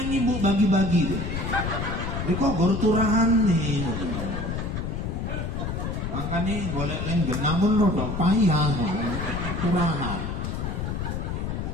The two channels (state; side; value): noise; left; rumble, 3 dB below the sound